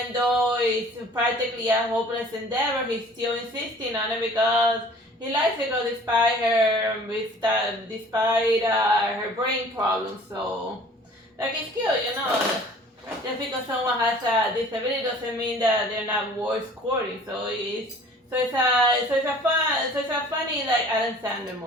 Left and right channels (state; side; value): normal; both; correlation 0.49